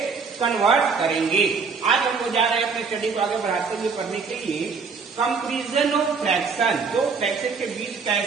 कन्वर्ट करेंगे. आज हम लोग जा रहे हैं अपने स्टडी को आगे बढ़ाते हुए पढ़ने के लिए कंपैरिजन ऑफ फ्रैक्शन. तो फ्रैक्शन के बीच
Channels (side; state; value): left; quieter; 5.1 dB